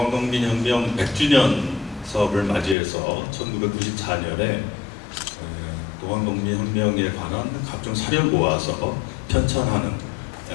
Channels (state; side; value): drops out; right; at 2.8 s